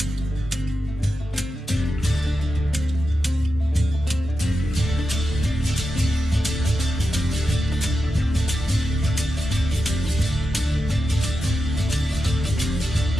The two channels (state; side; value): normal; both; correlation 0.89